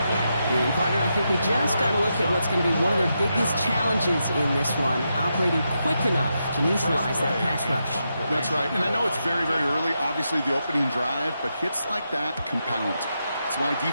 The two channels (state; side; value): inverted; both; correlation -0.85